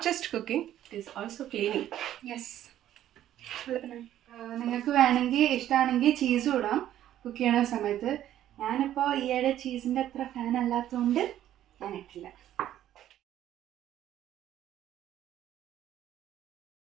just cooking, it is also cleaning. Yes. നിങ്ങൾക്ക് വേണമെങ്കിൽ ഇഷ്ടമാണെങ്കിൽ ചീസും ഇടാം കുക്ക് ചെയ്യണ സമയത്ത്. ഞാനിപ്പോൾ ഈയിടെ ചീസിൻ്റെ അത്ര ഫാൻ അല്ലാത്തതുകൊണ്ട് ഞാൻ ഇട്ടില്ല.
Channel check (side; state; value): left; quieter; 12.0 dB